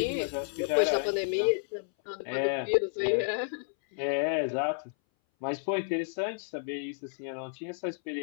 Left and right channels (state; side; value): silent; right; 57 dB below the other